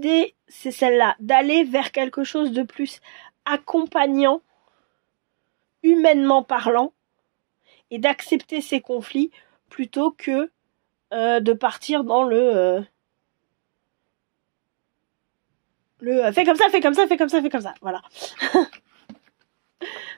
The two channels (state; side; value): silent; left; digital silence